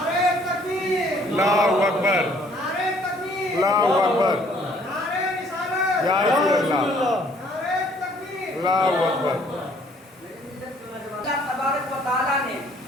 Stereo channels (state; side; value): normal; both; correlation 0.61